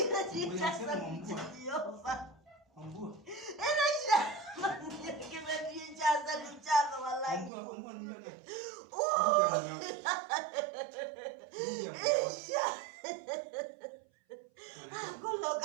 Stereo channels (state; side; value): drops out; left; at 7.5 s